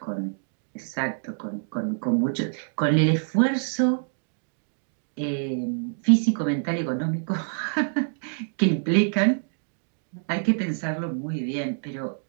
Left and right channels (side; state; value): left; silent; digital silence